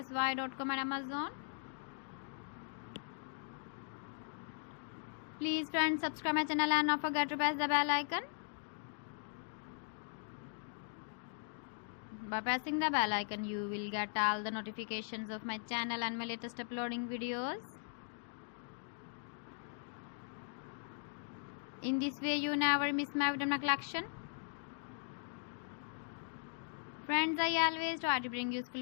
and Amazon. Please friends, subscribe my channel and not forget to press the bell icon. By pressing the bell icon, you will get all the notifications of my channel and my latest uploading videos. In this way, you never miss my video collection. Friends, I always try to bring useful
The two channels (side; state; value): right; silent; digital silence